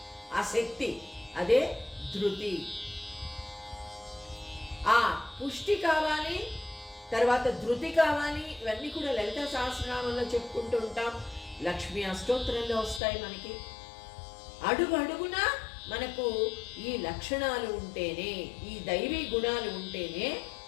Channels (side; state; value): right; drops out; at 13.0 s